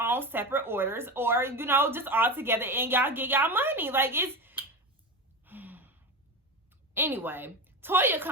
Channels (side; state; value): both; normal; correlation 0.23